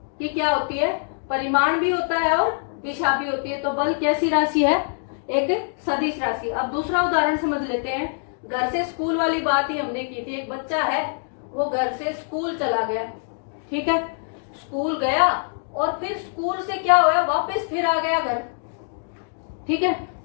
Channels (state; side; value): silent; right; digital silence